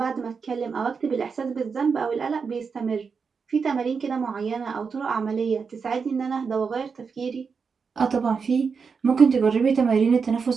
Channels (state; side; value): quieter; left; 5.5 dB